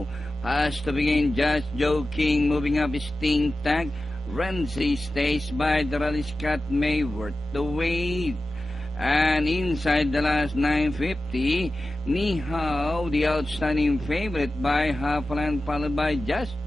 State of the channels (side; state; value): both; normal; correlation 0.94